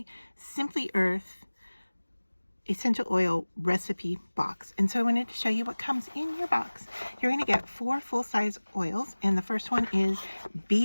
Simply Earth Essential Oil Recipe Box. And so I wanted to show you what comes in your box. You're going to get 4 full-size oils, and the first one is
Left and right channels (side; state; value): both; inverted; correlation -1.00